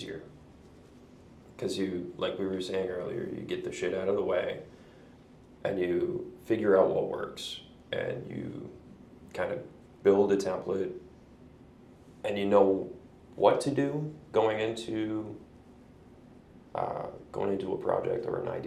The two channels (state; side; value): identical; both; correlation 1.00